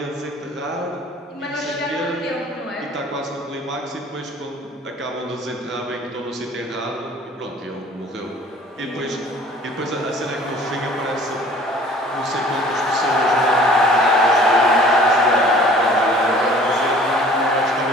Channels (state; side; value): normal; both; correlation 0.50